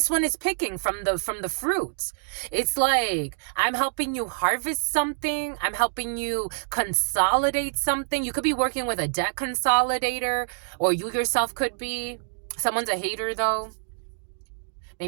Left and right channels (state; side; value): silent; left; digital silence